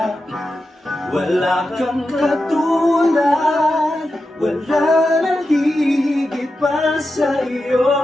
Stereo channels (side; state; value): both; normal; correlation 0.90